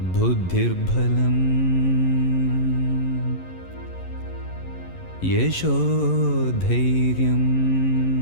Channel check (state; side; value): late; right; 11 ms